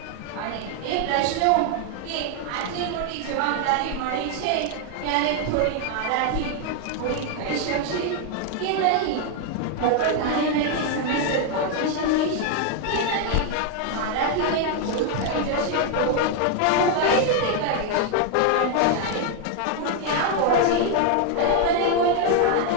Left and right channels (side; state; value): both; different; correlation 0.00